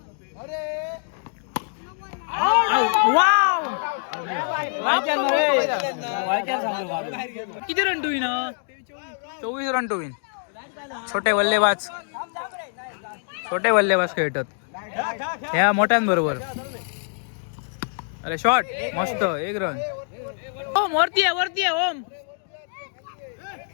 किती run to win? 24 run to win. छोटे बल्लेबाज खेळतात ह्या मोठ्यांबरोबर. अरे शॉट मस्त. 1 रन. ओम वरती आहे ओम.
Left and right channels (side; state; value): right; silent; digital silence